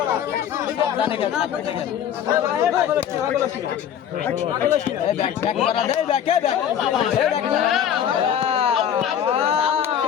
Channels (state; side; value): quieter; right; 9.3 dB